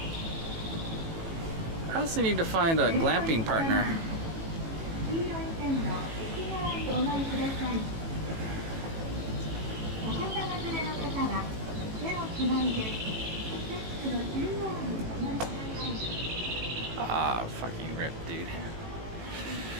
I also need to find a glamping partner. Ah, fucking rip, dude.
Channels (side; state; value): left; late; 18 ms